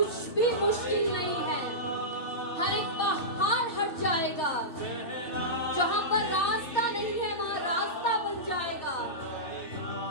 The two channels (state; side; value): late; right; 3.2 ms